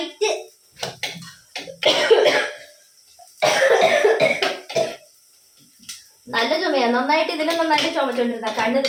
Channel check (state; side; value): identical; both; correlation 1.00